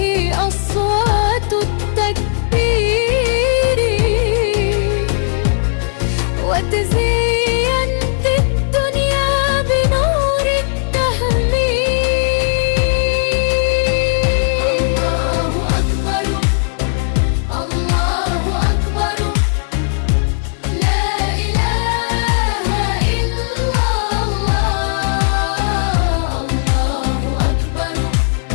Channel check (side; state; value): right; silent; 62 dB below the other